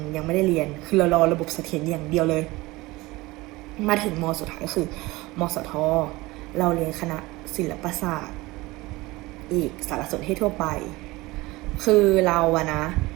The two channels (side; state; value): left; quieter; 20.9 dB